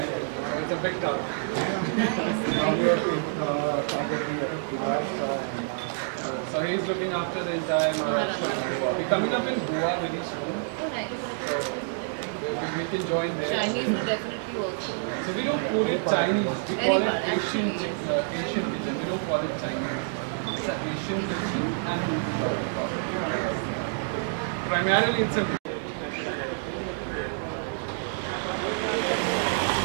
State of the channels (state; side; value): silent; left; digital silence